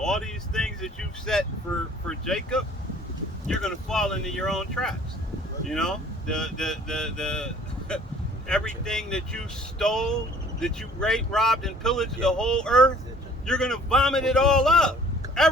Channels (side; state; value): both; normal; correlation 0.54